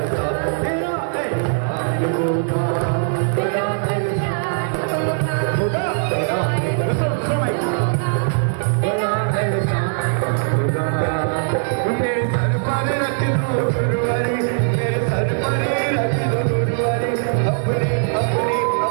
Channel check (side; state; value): left; silent; 64 dB below the other